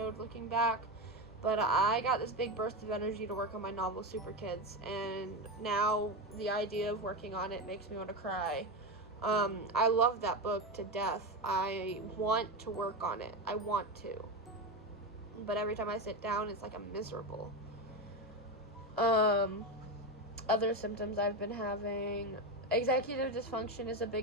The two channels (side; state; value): both; normal; correlation 0.16